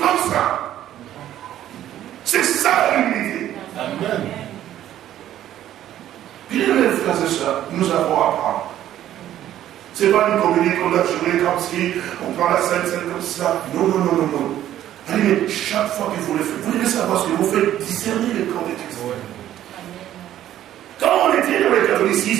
ça. C'est ça l'humilité. Amen. Bien, mes frères et sœurs, nous avons à apprendre. Ce n'est pas une comédie qu'on a jouée comme si on prend la scène comme ça. Non, non, non, non, non. Allez, mais chaque fois que vous le faites, vous devez savoir ce que vous faites discerner le camp de Christ. Quand on était dans le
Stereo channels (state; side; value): quieter; left; 12.1 dB